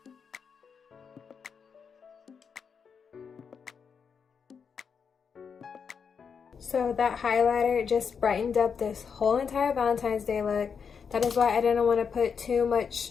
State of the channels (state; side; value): quieter; right; 6.3 dB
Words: So that highlighter just brightened up this whole entire Valentine's Day look. That is why I didn't want to put too